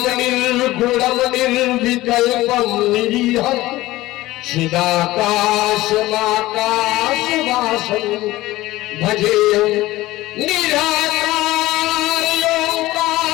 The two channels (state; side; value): quieter; right; 17.6 dB